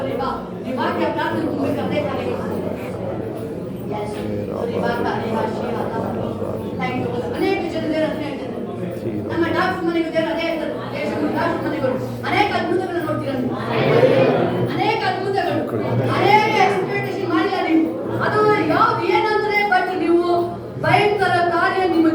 ವಾಕ್ಯ ಪ್ರಾರ್ಥನೆ ತುಂಬಬೇಕಾದ್ರೆ ಅನೇಕ ಜನ ನಮ್ಮ ಡಾಕ್ಟರ್ ಮನೆಗೂ ಅದೇ ಡಾಕ್ಟರ್ ಮನೆಗಳು ಅನೇಕ ಅದ್ಭುತಗಳನ್ನು ನೋಡ್ತೀರ. ಅನೇಕ ಅದ್ಭುತಗಳು, ಅನೇಕ ಎಕ್ಸ್ಪೆಕ್ಟೇಷನ್ ಮಾಡಿಲ್ಲ ನೀವು. ಅದು ಯಾವ್ದು ಏನಂದ್ರೆ, ಬಟ್ ನೀವು ಭಯಂಕರ ಕಾರ್ಯ ನಿಮ್ಮ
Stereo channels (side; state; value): both; identical; correlation 1.00